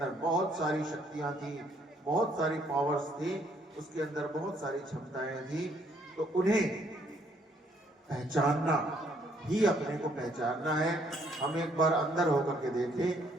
बहुत सारी शक्तियां थी, बहुत सारी पावर्स थी, उसके अंदर बहुत सारी क्षमताएं थी। तो उन्हें पहचानना ही अपने को पहचानना है। हम एक बार अंदर होकर के देखें,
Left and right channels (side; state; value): both; normal; correlation 0.67